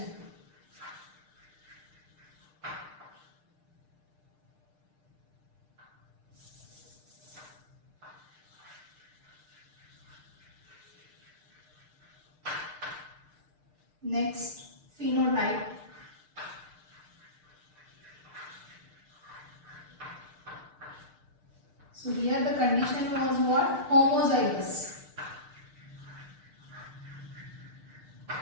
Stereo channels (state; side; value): late; left; 6.6 ms